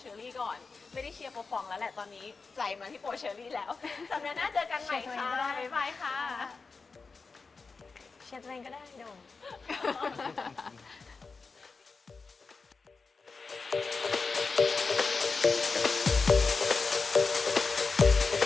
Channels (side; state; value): right; quieter; 4.4 dB